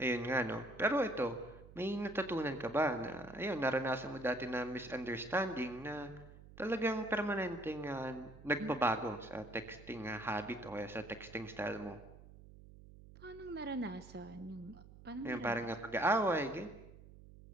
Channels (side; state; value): right; noise; hum, 19 dB below the sound